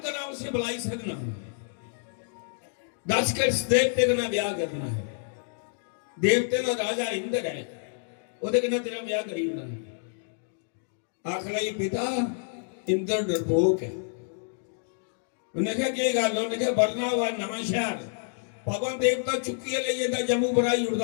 करा उसे बुलाई सकना, दस के इस देवते का ब्याह करना है। देवते का राजा इंद्र है, ਉਹਦੇ ਕਿੰਨਾ ਤੇਰਾ ਵਿਆਹ ਕਰੀ ਉਹਨਾਂ ਨੇ। ਆਖ ਲਈ ਪਿਤਾ ਇੰਦਰ ਡਰਪੋਕ ਹੈ। ਉਹਨੇ ਕਿਹਾ ਕੀ ਗੱਲ? ਉਹਨੇ ਕਿਹਾ ਵਰਨਾ ਵਾ ਨਵਾਂ ਸ਼ਹਿਰ ਪਵਨ ਦੇਵਤਾ ਚੁੱਕੀ ਲਈ ਇਹਦਾ ਜੰਮੂ ਬੜਾਈ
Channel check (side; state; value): right; silent; digital silence